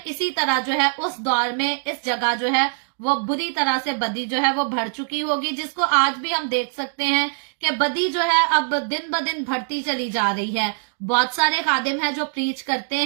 इसी तरह जो है उस दौर में इस जगह जो है वो बुरी तरह से बदी जो है वो भर चुकी होगी, जिसको आज भी हम देख सकते हैं कि बदी जो है अब दिन ब दिन बढ़ती चली जा रही है। बहुत सारे खादिम हैं जो प्रीच करते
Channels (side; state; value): left; silent; digital silence